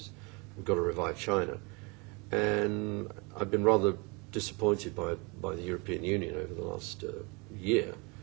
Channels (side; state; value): left; quieter; 29.1 dB